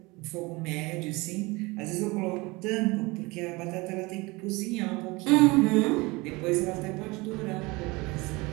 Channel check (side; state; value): left; quieter; 24.0 dB